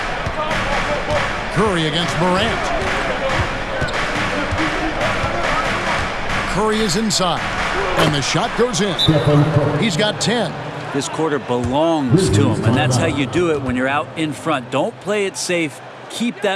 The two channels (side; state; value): both; identical; correlation 1.00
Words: Curry against Morant. Curry is inside, and the shot goes in. He's got 10. This quarter belongs to him, and that's how you do it when you're out in front. Don't play it safe. Keep